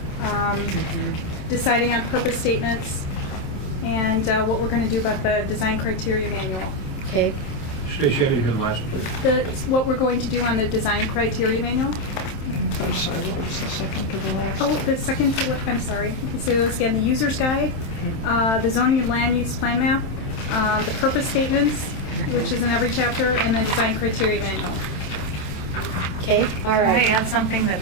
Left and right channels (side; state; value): right; late; 27 ms